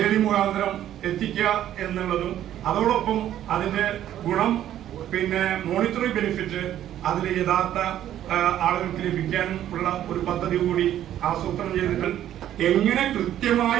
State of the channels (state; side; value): quieter; left; 11.7 dB